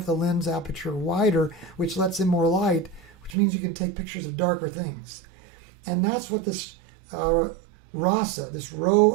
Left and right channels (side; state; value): left; drops out; at 3.4 s